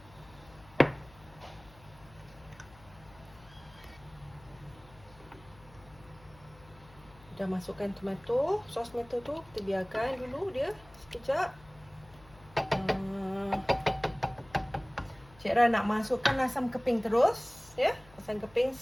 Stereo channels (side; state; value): left; noise; hum, 24 dB below the sound